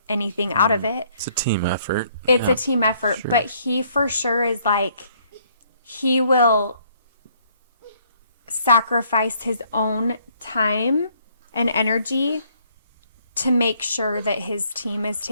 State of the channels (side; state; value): both; inverted; correlation -0.66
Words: anything out of it. It's a team effort. It's a team effort, sure. But he for sure is like, he will sacrifice his own time and energy to make sure that his team is